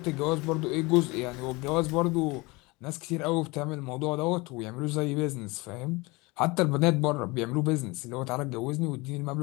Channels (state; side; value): quieter; right; 24.7 dB